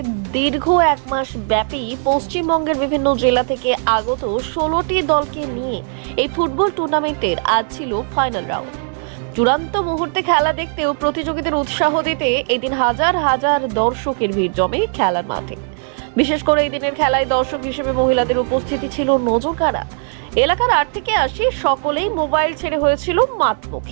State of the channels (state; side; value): silent; left; digital silence